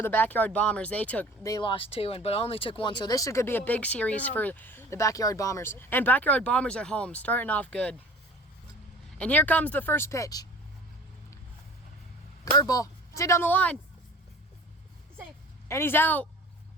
the Backyard Bombers, they lost two, but only took one. So this could be a big series for the Backyard Bombers. And Backyard Bombers at home, starting off good. And here comes the first pitch. Curveball. It's hit down the line. And he's out.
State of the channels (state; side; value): normal; both; correlation 0.43